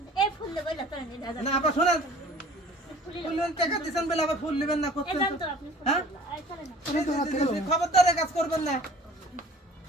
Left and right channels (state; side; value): normal; both; correlation 0.49